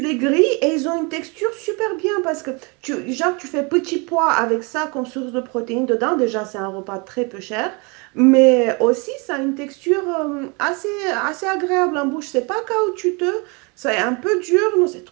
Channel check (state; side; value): quieter; left; 30.5 dB